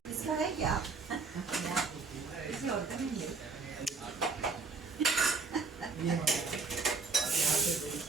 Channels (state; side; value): quieter; left; 4.5 dB